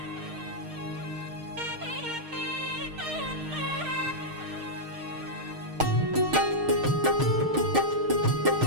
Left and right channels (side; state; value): left; late; 6.5 ms